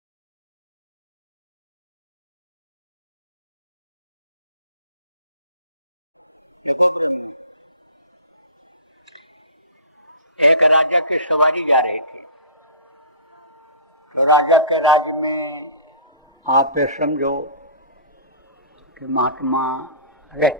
देखो प्रेमियों, एक राजा की सवारी जा रही थी। तो राजा के राज्य में आप ये समझो कि महात्मा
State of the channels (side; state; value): both; inverted; correlation -0.40